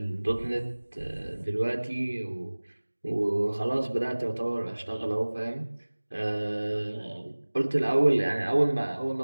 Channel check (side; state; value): both; inverted; correlation -1.00